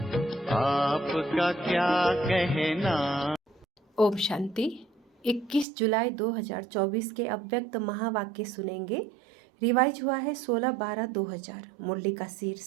आपका क्या कहना। ओम शांति। 21 जुलाई 2024 के अव्यक्त महावाक्य सुनेंगे। रिवाइज हुआ है 16/12/2000। मुरली का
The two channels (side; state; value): left; drops out; at 5.7 s